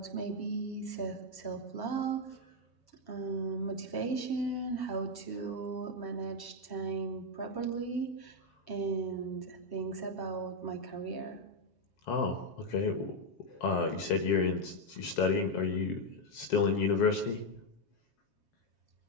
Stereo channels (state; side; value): late; right; 7.3 ms